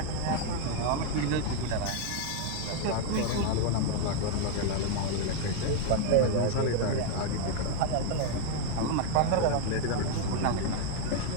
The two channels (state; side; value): different; both; correlation 0.01